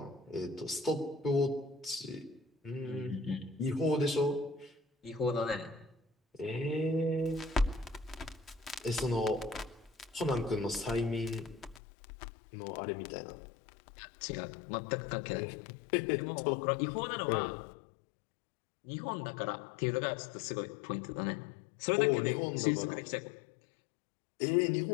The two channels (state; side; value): drops out; right; at 11.8 s